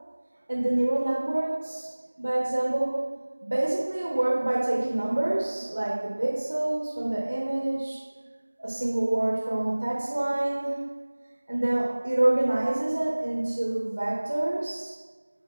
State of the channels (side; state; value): both; inverted; correlation -1.00